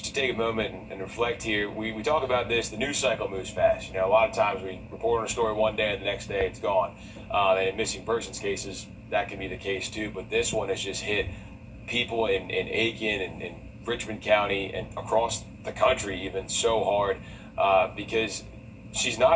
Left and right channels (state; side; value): identical; both; correlation 1.00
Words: to take a moment and reflect here, we talk about this, the news cycle moves fast. A lot of times we report on a story one day and the next day it's gone. And in missing persons cases, that can be the case too. But this one has just hit people in Aiken and Richmond County and across the country even so hard because she's